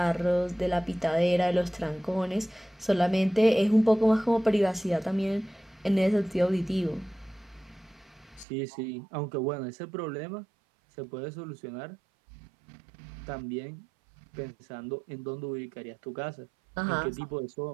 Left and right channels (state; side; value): drops out; left; at 8.5 s